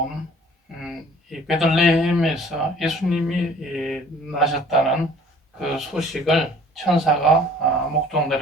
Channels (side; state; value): both; normal; correlation 0.52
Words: 이 베들레헴에서 예수님이 나셨다는 그 소식을 천사가